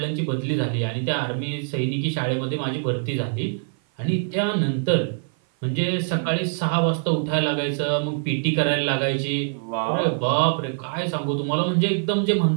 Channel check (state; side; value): silent; left; 55 dB below the other